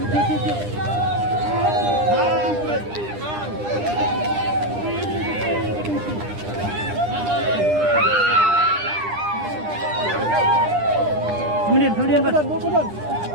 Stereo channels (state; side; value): late; left; 9.9 ms